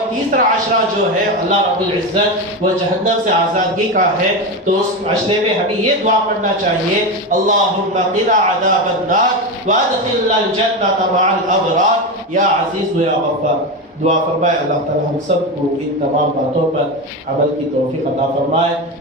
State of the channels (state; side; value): normal; both; correlation 0.17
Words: تیسرا عشرہ جو ہے اللہ رب العزت وہ جہنم سے آزادگی کا ہے، تو اس عشرے میں ہمیں یہ دعا پڑھنا چاہیے، اللہم قنا عذاب النار وادخلنا الجنۃ مع الابرار یا عزیز و یا غفار۔ دعا فرمائے اللہ تعالی ہم سب کو ان تمام باتوں پر عمل کی توفیق عطا فرمائے۔